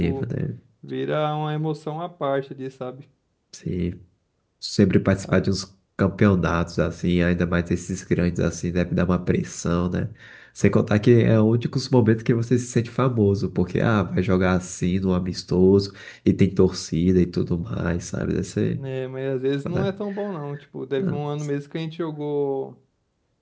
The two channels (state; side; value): identical; both; correlation 1.00